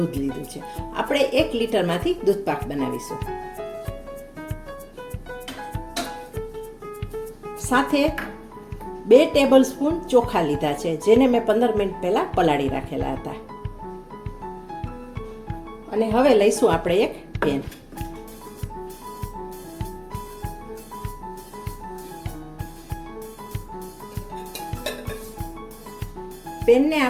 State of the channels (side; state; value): both; identical; correlation 1.00